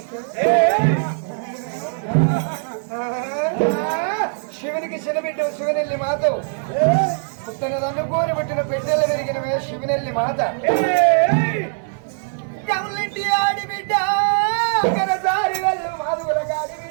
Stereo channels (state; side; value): silent; left; 65 dB below the other